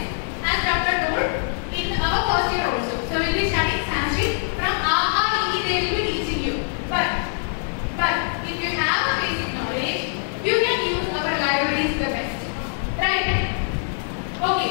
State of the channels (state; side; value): silent; right; 63 dB below the other